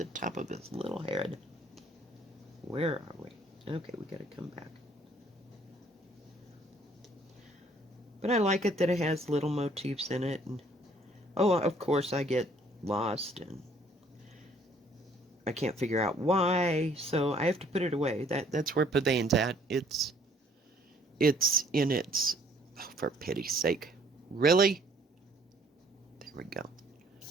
top of his little head. Where are we? Okay, we gotta come back. But I like it that it has little motifs in it, and oh, of course I get lost and I can't figure out why, so I have to put it away. That's where Pavane's at. It's in its... Oh, for pity's sake. Really? There we go.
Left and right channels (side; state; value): both; normal; correlation 0.60